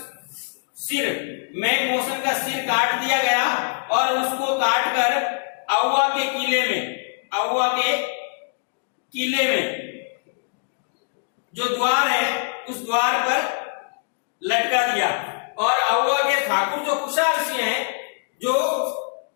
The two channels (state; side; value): silent; right; 63 dB below the other